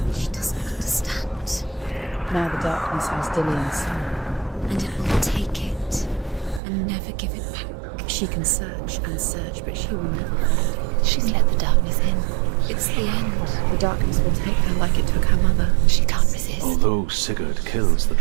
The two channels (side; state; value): left; drops out; at 6.6 s